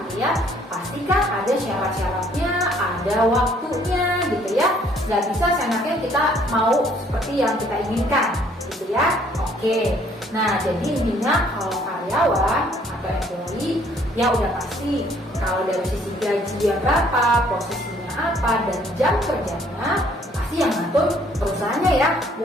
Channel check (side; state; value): both; normal; correlation 0.62